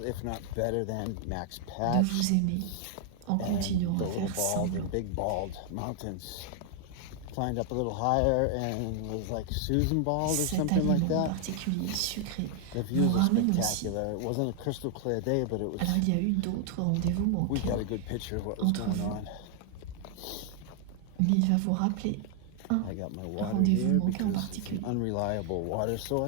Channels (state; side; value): different; both; correlation 0.00